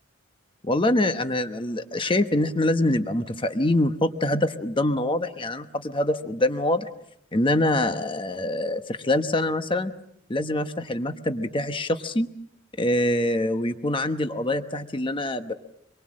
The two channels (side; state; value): both; normal; correlation 0.54